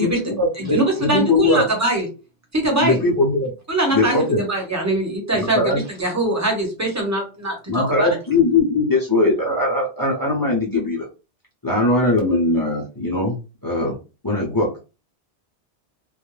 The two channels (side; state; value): both; normal; correlation -0.07